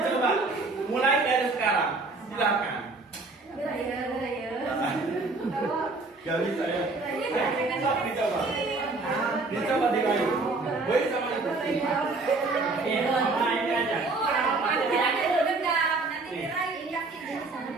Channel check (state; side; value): quieter; left; 3.5 dB